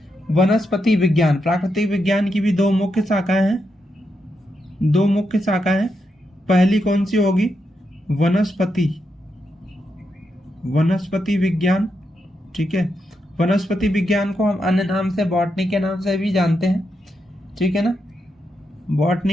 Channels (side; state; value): both; normal; correlation 0.84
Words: वनस्पति विज्ञान। प्राकृतिक विज्ञान की भी दो मुख्य शाखाएं हैं। पहली कौन सी होगी? वनस्पति विज्ञान, ठीक है। वनस्पति विज्ञान को हम अन्य नाम से बॉटनी के नाम से भी जानते हैं, ठीक है ना।